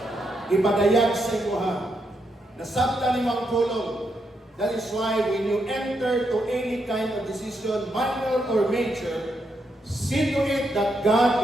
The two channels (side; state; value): both; normal; correlation 0.81